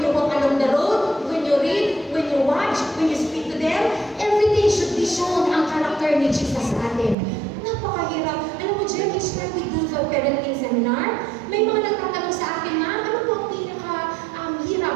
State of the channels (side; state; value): left; drops out; at 7.2 s